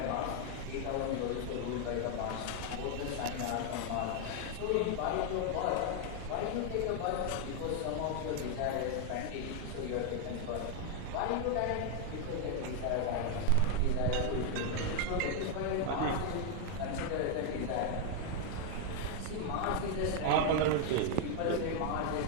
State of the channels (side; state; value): both; different; correlation 0.00